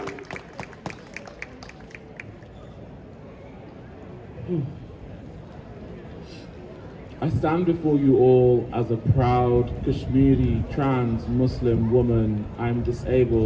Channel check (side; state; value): both; identical; correlation 1.00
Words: I stand before you all as a proud Kashmiri trans Muslim woman. I'm